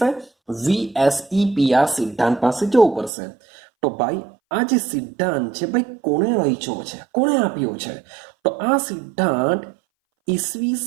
VSEPR સિદ્ધાંત પાસે જવું પડશે. તો ભાઈ આ જે સિદ્ધાંત છે ભાઈ કોણે રચ્યો છે, કોણે આપ્યો છે? તો આ સિદ્ધાંત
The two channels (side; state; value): left; drops out; at 3.1 s